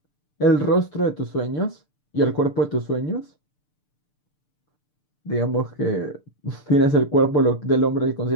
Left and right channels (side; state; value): right; late; 6.8 ms